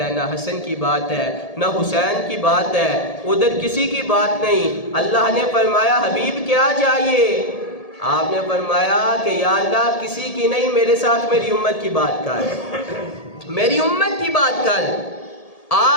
نہ حسن کی بات ہے، نہ حسین کی بات ہے، ادھر کسی کی بات نہیں۔ اللہ نے فرمایا حبیب کیا چاہیے؟ آپ نے فرمایا کہ یا اللہ کسی کی نہیں، میرے ساتھ میری امت کی بات کر، میری امت کی بات کر،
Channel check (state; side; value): late; right; 1.8 ms